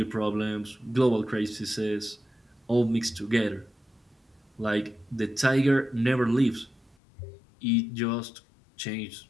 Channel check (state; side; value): drops out; right; at 7.0 s